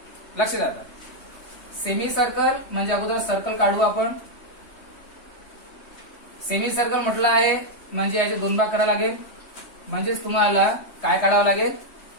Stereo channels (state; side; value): late; right; 3.2 ms